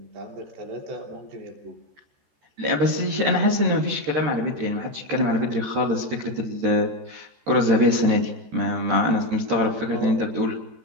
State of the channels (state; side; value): late; left; 14 ms